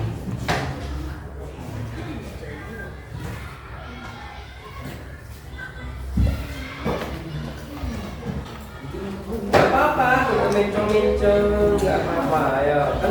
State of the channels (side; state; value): both; identical; correlation 1.00